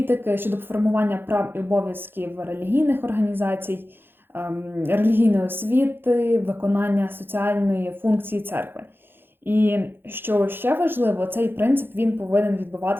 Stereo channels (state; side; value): late; left; 0.10 ms